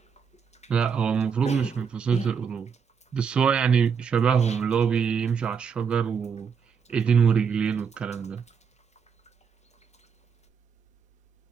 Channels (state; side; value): quieter; left; 6.5 dB